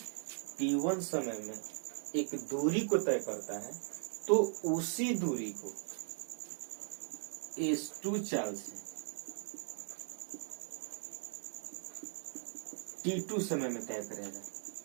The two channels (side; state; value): left; silent; 52 dB below the other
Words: T1 समय में एक दूरी को तय करता है, तो उसी दूरी को S2 चाल से T2 समय में तय करेगा।